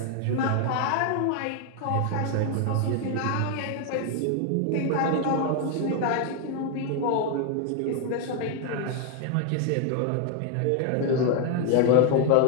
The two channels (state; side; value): different; both; correlation 0.01